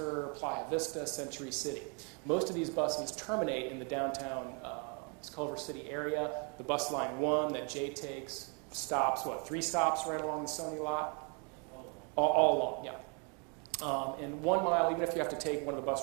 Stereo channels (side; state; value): left; quieter; 35.9 dB